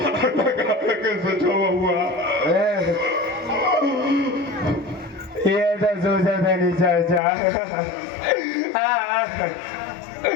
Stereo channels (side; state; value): right; drops out; at 7.2 s